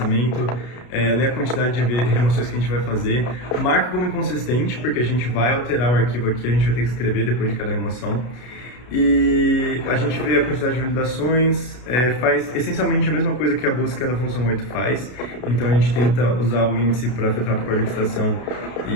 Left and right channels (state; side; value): late; right; 32 ms